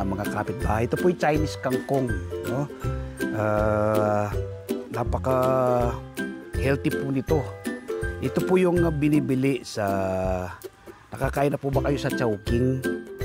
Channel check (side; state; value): both; identical; correlation 1.00